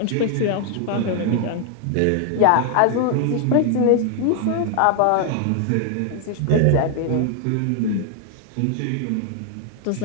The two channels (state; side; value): different; both; correlation 0.00